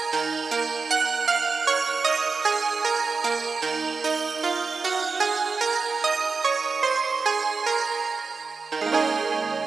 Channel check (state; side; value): quieter; left; 4.5 dB